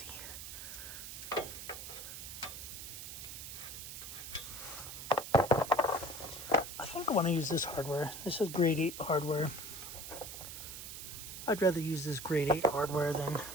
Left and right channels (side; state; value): right; noise; hiss, 9 dB below the sound